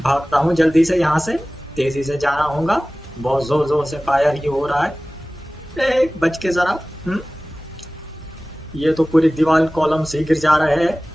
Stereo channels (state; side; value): normal; both; correlation 0.97